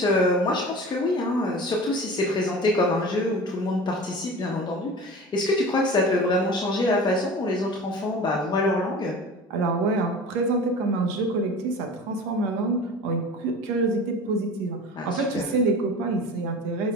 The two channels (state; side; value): normal; both; correlation 0.36